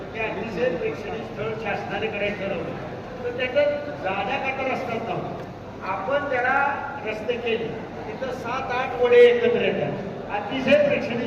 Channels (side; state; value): both; identical; correlation 1.00